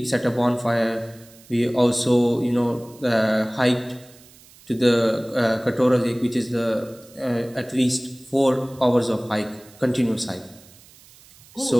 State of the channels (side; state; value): right; noise; hiss, 25 dB below the sound